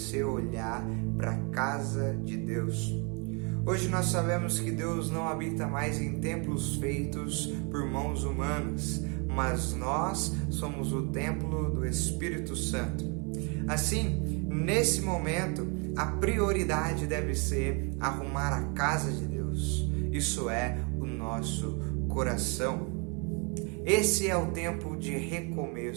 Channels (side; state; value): left; quieter; 33.7 dB